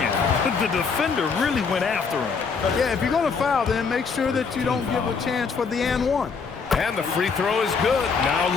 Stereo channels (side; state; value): right; quieter; 5.4 dB